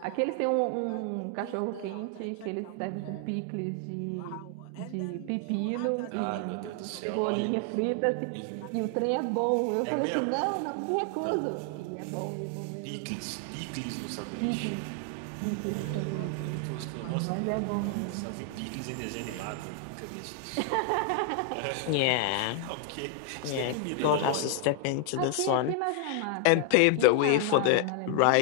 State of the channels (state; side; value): different; both; correlation 0.00